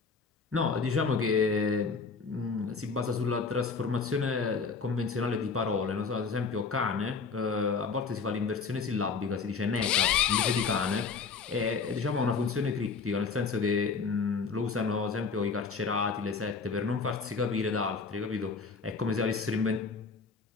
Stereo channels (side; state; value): right; quieter; 4.9 dB